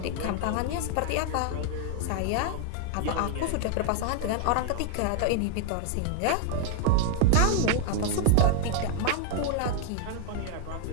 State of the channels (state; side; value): different; both; correlation 0.00